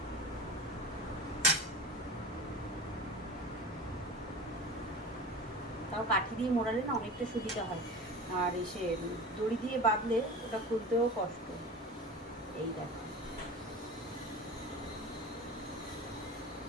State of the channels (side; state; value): both; normal; correlation 0.33